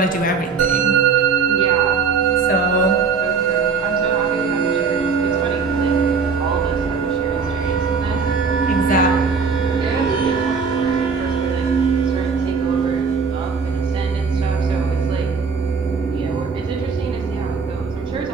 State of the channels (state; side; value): quieter; left; 5.4 dB